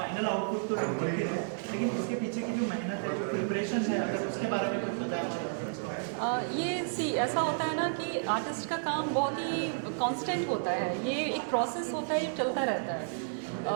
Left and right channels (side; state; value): left; silent; digital silence